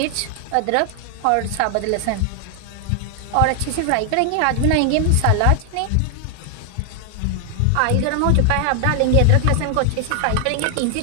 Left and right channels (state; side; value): different; both; correlation 0.00